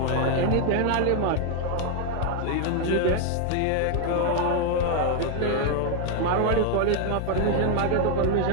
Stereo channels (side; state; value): both; different; correlation 0.00